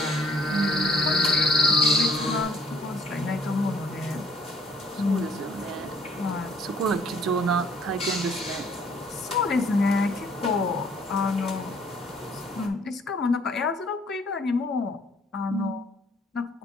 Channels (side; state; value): both; normal; correlation 0.61